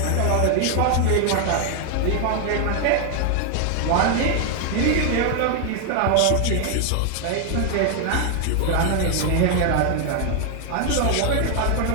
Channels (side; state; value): both; different; correlation 0.00